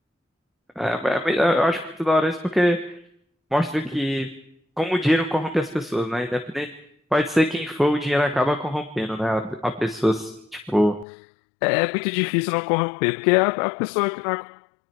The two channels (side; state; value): right; drops out; at 11.1 s